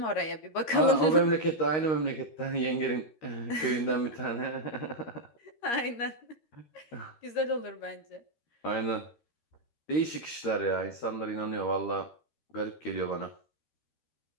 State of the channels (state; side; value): late; right; 13 ms